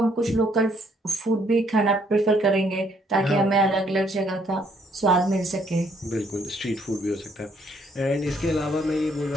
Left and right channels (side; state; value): both; normal; correlation 0.68